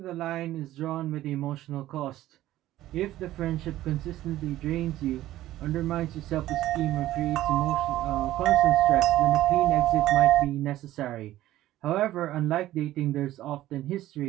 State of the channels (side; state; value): left; quieter; 14.6 dB